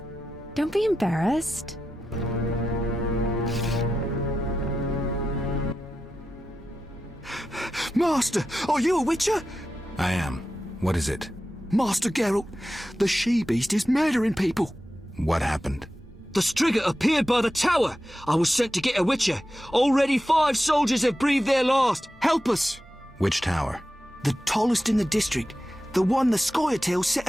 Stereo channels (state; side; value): normal; both; correlation 0.91